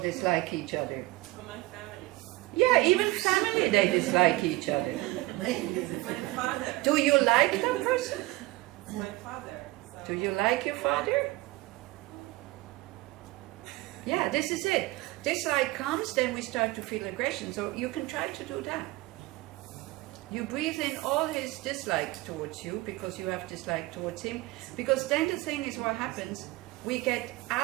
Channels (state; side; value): quieter; left; 20.4 dB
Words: each other. For my family. Yeah, even family, they dislike each other. My father. Do you like that person? My father. So. Do you like your father? Yeah, this is it. Dislike comes, then we start to feel aggression. So you can try to do that. You breathe in all his dislike towards you because you have dislike towards him. Because then the thing is, what happens, we get